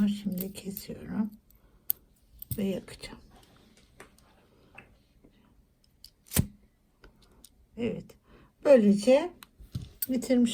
şimdi kesiyorum. Ve yakacağım. Evet. Böylece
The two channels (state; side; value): identical; both; correlation 1.00